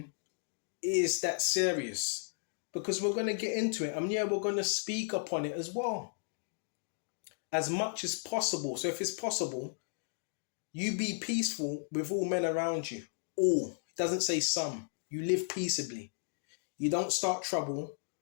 is that serious, because we're going to get into it, and yeah, we're going to speak upon it as well. As much as possible. So if it's possible, you be peaceful with all men around you. All. It doesn't say some. You live peaceably. You don't start trouble.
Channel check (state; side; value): silent; right; digital silence